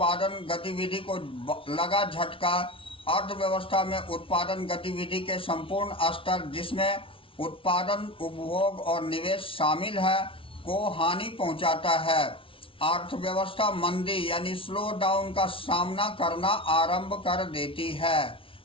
गतिविधि को लगा झटका। अर्थव्यवस्था में उत्पादन गतिविधि के संपूर्ण स्तर जिसमें उत्पादन उपभोग और निवेश शामिल है को हानि पहुंचाता है। अर्थव्यवस्था मंदी यानी स्लो डाउन का सामना करना आरंभ कर देती है।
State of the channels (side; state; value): right; late; 0.25 ms